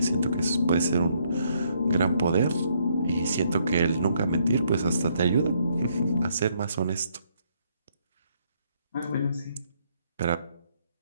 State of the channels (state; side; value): inverted; both; correlation -0.71